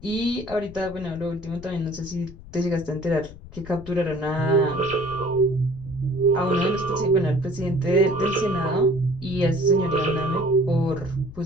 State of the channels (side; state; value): left; noise; rumble, 17 dB below the sound